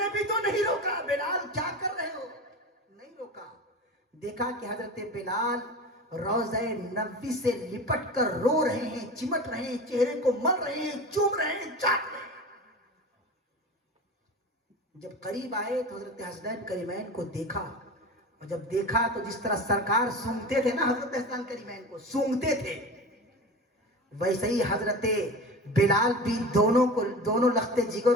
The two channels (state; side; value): normal; both; correlation 0.31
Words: بھی تو نہیں روکا بلال کیا کر رہے ہو، نہیں روکا. دیکھا کہ حضرت بلال روضہ نبوی سے لپٹ کر رو رہے ہیں، چمٹ رہے ہیں، چہرے کو مل رہے ہیں، چوم رہے ہیں، چاٹ رہے ہیں. جب قریب آئے تو حضرت حسنین کریمین کو دیکھا، اور جب دیکھا تو جس طرح سرکار سونگتے تھے نا حضرت حسنین کریمین کو سونگتے تھے، ویسے ہی حضرت بلال بھی دونوں لخت جگر